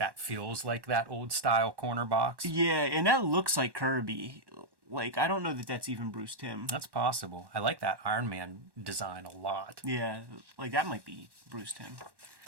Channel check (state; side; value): late; left; 1.1 ms